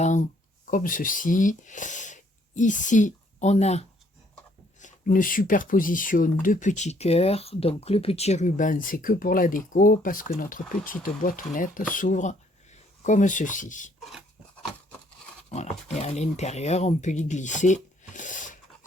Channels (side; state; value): both; normal; correlation 0.66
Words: comme ceci. Ici, on a une superposition de petits cœurs. Donc le petit ruban, c'est que pour la déco, parce que notre petite boîtounette s'ouvre comme ceci. Voilà, et à l'intérieur, on peut y glisser